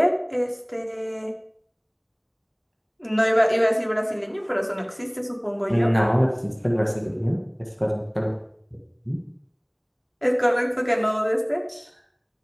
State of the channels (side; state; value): both; identical; correlation 1.00